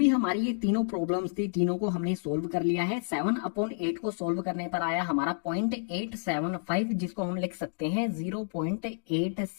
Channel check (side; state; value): right; silent; digital silence